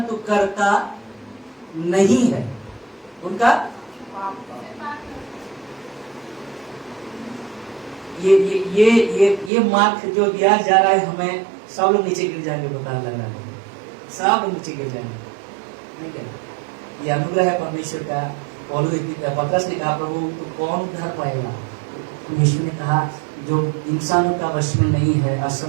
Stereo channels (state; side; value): drops out; left; at 9.5 s